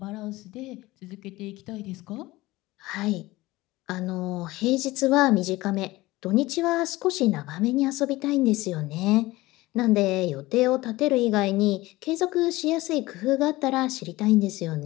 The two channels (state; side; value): quieter; right; 19.3 dB